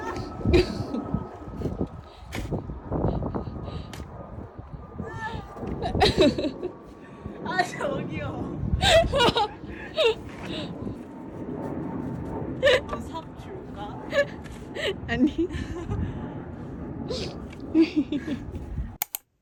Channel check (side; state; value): both; identical; correlation 1.00